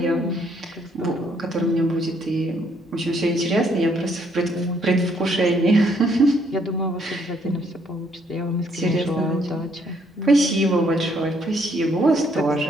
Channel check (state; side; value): normal; both; correlation 0.69